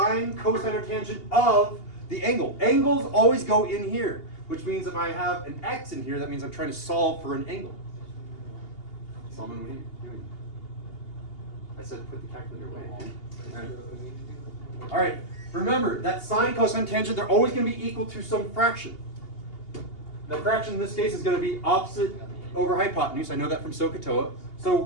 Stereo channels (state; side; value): late; right; 2.8 ms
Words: cosine, or tangent of the angle. Angles always go in here, which means if I have an x in here, that means I'm trying to solve for an angle. Solomon, what are you doing? I said put the calculator away. All right, remember that sine, cosine, tangent, they're always going to be equal to some fraction. The fraction in this case is going to be opposite over hypotenuse. I know that from SOHCAHTOA. So